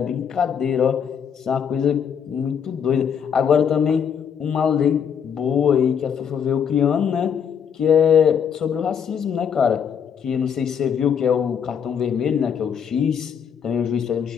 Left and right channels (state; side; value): quieter; right; 7.6 dB